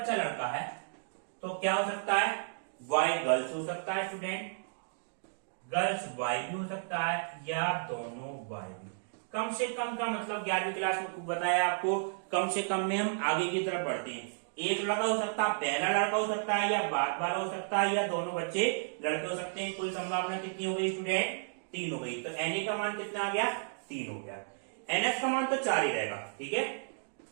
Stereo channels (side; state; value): left; silent; digital silence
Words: लड़का है तो क्या हो सकता है, बॉय गर्ल्स हो सकता है स्टूडेंट, गर्ल्स बॉय भी हो सकता है या दोनों बॉय भी। कम से कम का मतलब 11वीं क्लास में बताया आपको, कम से कम में हम आगे की तरफ बढ़ते हैं। एक लड़का हो सकता है, पहला लड़का हो सकता है या बाद वाला हो सकता है या दोनों बच्चे लड़के हो सकते हैं। कुल संभावना कितनी हो गई स्टूडेंट, 3 हो गई। तो NA का मान कितना आ गया, 3 हो गया। NS का मान तो 4 ही रहेगा। ठीक है,